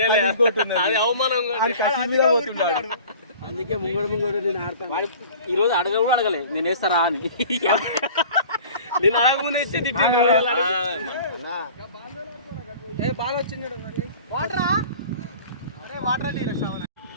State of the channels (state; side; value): inverted; both; correlation -0.44